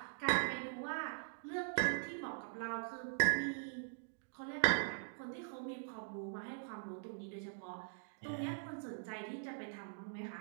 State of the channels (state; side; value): silent; left; digital silence